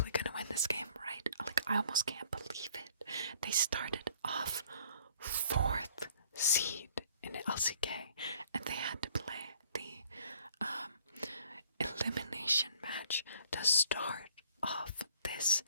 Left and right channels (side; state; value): both; inverted; correlation -0.59